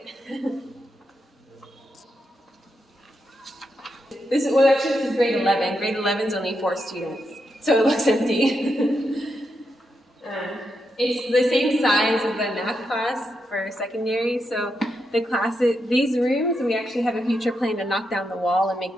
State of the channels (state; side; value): normal; both; correlation 0.84